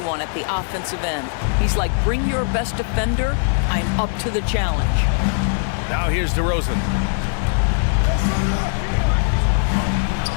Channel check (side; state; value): right; silent; digital silence